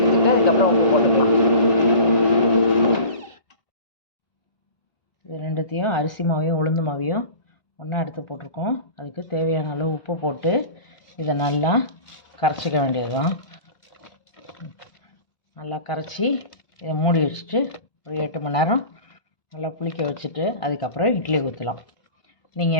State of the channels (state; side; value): late; right; 1.6 ms